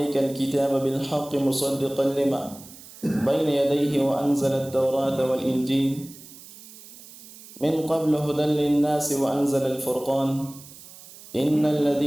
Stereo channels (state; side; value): noise; right; hiss, 18 dB below the sound